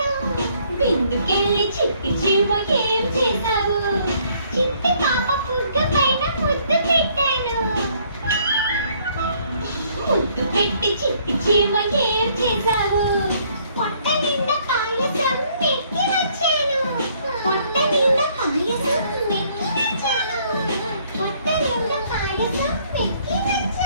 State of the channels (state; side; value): inverted; both; correlation -0.65